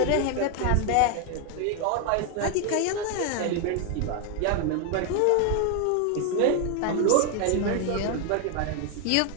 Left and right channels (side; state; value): both; different; correlation 0.01